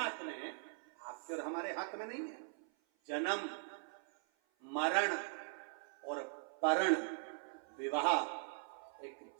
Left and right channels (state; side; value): silent; left; 51 dB below the other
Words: में है, आपके और हमारे हाथ में नहीं है। जन्म, मरण और परण, विवाह, एक